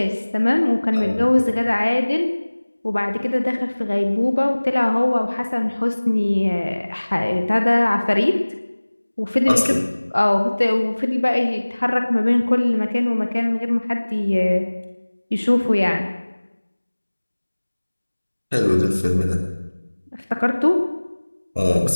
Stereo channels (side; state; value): both; inverted; correlation -1.00